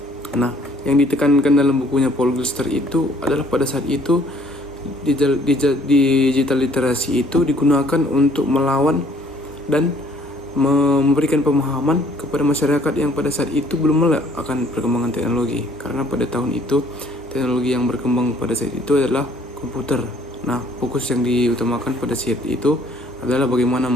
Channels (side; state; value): both; normal; correlation 0.60